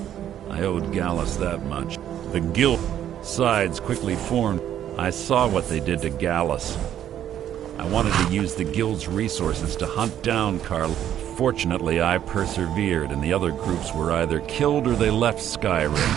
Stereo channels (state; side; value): quieter; left; 10.7 dB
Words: I owed Gallus that much. The guild sides quickly formed. I saw what they did to Gallus. I wanted to use the guild's resources to hunt down Carl. Fortunately, I persevered, and the other groups were either killed or they left Skyrim.